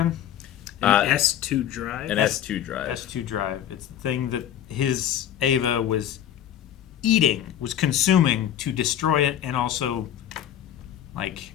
An S2 drive. An S2 drive. S2 drive. It's the thing that his Ava was eating, was consuming to destroy it and also like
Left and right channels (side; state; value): right; quieter; 10.6 dB